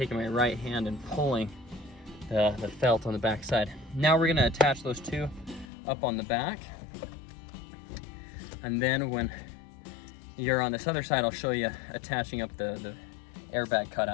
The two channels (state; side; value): drops out; right; at 5.7 s